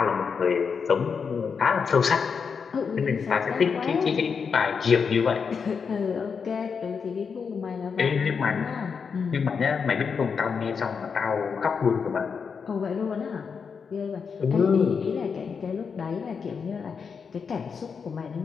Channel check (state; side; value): quieter; right; 5.9 dB